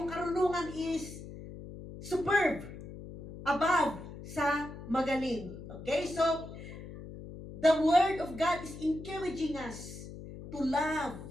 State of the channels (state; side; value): noise; left; hum, 12 dB below the sound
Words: karunungan is superb, above sa magaling. Okay? So, the Word of God is encouraging us to